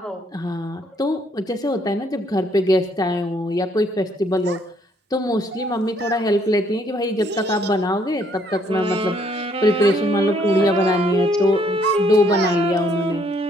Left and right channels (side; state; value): both; normal; correlation 0.67